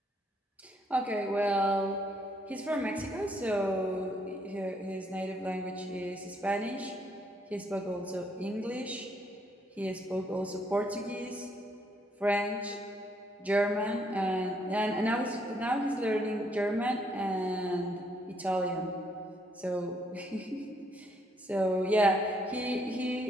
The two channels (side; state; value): both; normal; correlation 0.71